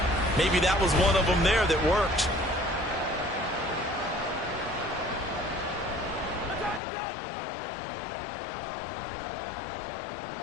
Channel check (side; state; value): right; drops out; at 6.8 s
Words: Maybe that was one of them there that worked.